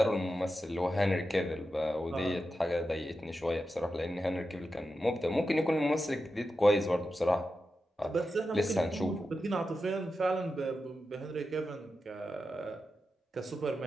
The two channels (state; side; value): normal; both; correlation 0.90